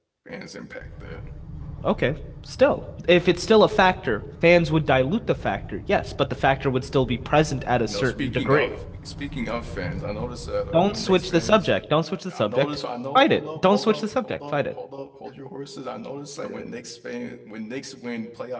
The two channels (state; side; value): identical; both; correlation 1.00